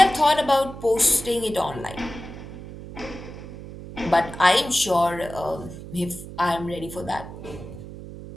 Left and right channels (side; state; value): right; noise; hum, 13 dB below the sound